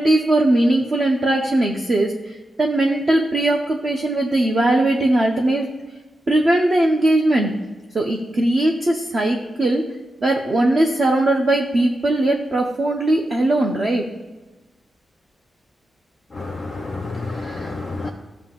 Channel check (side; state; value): both; normal; correlation 0.89